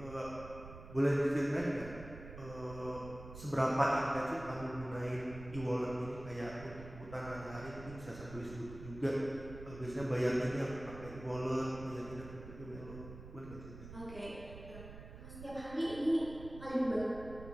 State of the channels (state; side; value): noise; right; rumble, 13 dB below the sound